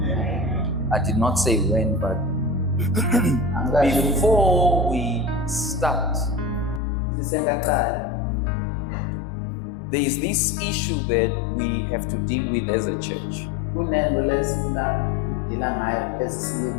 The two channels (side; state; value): right; drops out; at 6.8 s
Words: I did not say when, but before we start, there is this issue that we have to deal with as a church.